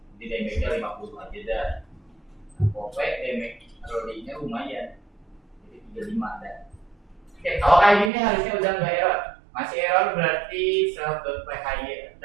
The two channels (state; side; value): drops out; left; at 8.1 s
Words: Jadi damage-nya 50 aja dah. Pokoknya damage rolling-nya lumayan. Jadi 35 dah. Oke, kalau kayak gini harusnya udah nggak error. Masih error berarti self.phy